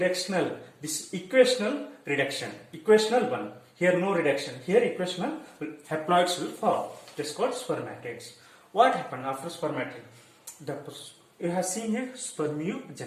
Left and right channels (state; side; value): identical; both; correlation 1.00